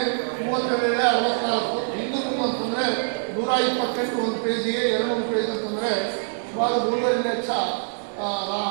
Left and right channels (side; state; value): left; silent; digital silence